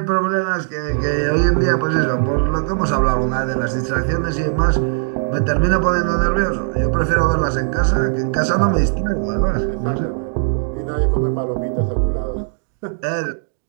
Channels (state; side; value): silent; left; digital silence